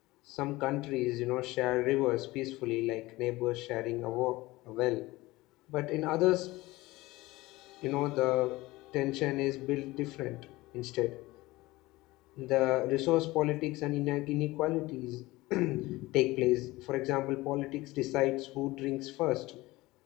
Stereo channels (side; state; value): right; quieter; 19.7 dB